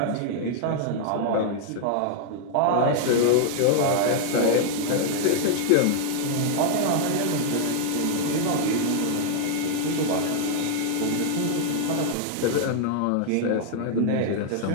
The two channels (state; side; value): different; both; correlation -0.01